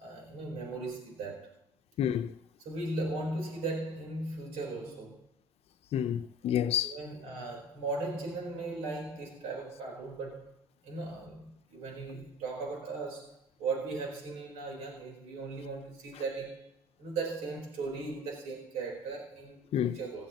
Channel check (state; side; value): normal; both; correlation 0.45